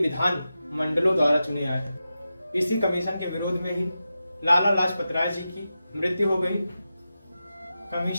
मंडलों द्वारा चुने आए। इसी कमीशन के विरोध में ही लाला लाजपत राय जी की मृत्यु हो गई।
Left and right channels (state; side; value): inverted; both; correlation -0.91